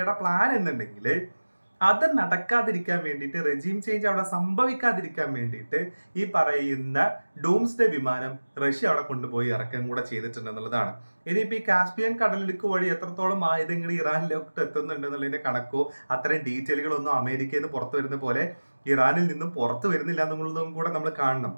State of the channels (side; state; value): both; inverted; correlation -1.00